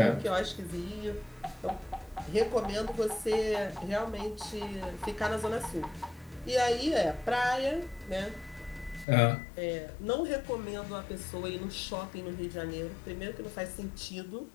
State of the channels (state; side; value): drops out; right; at 9.1 s